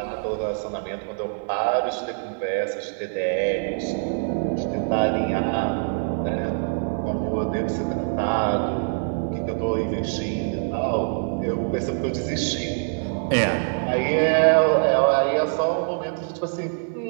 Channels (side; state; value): left; silent; 62 dB below the other